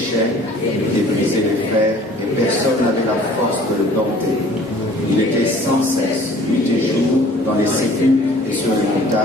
et brisé les fers, et personne n'avait la force de le dompter. Il était sans cesse, nuit et jour, dans les sépulcres et sur les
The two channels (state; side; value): normal; both; correlation 0.51